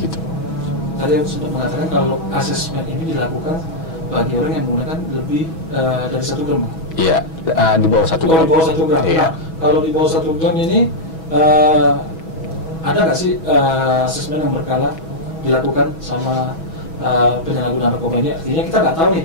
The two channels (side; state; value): right; late; 6.2 ms